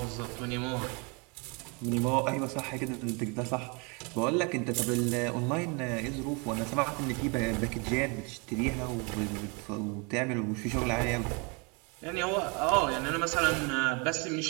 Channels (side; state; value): left; quieter; 31.5 dB